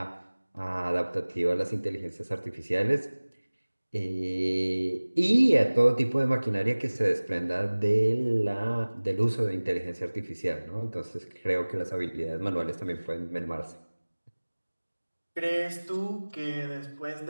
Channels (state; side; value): inverted; both; correlation -1.00